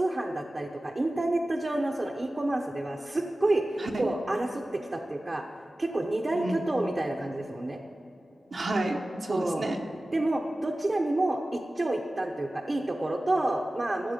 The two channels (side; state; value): both; normal; correlation 0.96